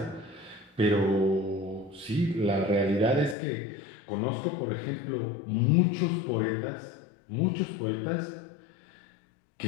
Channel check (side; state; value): right; drops out; at 3.4 s